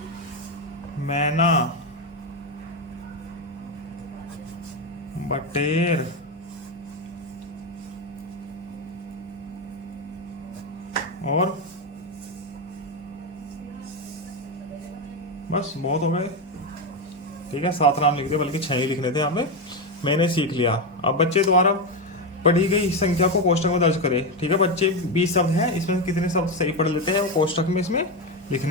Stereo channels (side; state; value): both; normal; correlation 0.11